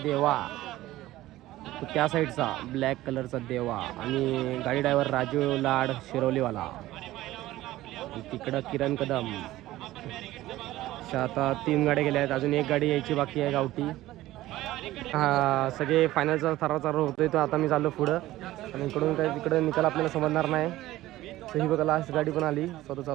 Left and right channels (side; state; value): left; quieter; 16.1 dB